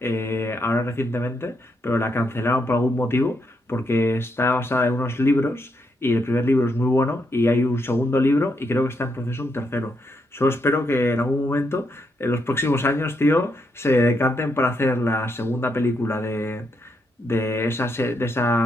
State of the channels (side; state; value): both; normal; correlation 0.79